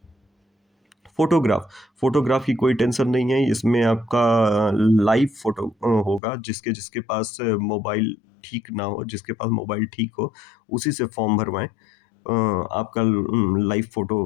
फ़ोटोग्राफ़ की कोई टेंशन नहीं है, इसमें आपका लाइव फ़ोटो होगा। जिसके पास मोबाइल ठीक ना हो, जिसके पास मोबाइल ठीक हो, उसी से फॉर्म भरवाएँ। आपका लाइव फ़ोटो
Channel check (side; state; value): right; drops out; at 6.2 s